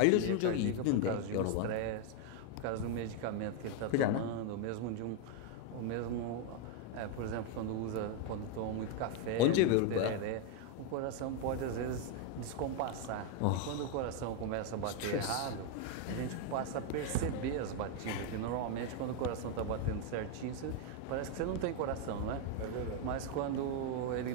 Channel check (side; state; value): both; different; correlation 0.01